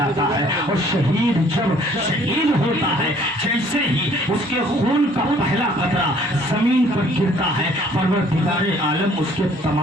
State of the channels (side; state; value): both; normal; correlation 0.58